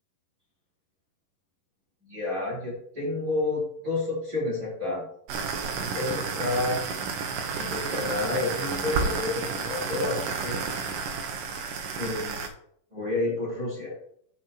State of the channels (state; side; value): late; left; 11 ms